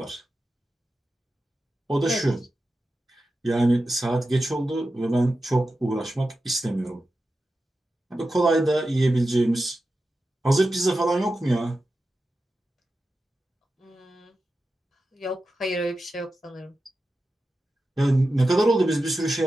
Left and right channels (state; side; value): normal; both; correlation 0.92